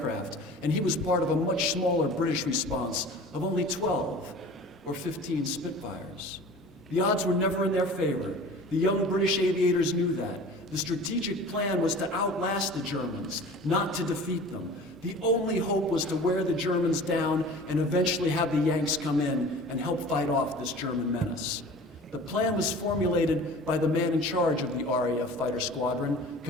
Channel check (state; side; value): normal; both; correlation 0.41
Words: and he was part of a much smaller British response of only 12 or 15 Spitfires. The odds were never in their favor. The young British aviators knew that. The strategic plan was to outlast the Germans, not to defeat them. The only hope was to wear the Germans down and eventually have the Yanks come in and help fight off this German menace. The plan was formulated by the man in charge of the RAF fighter squadron,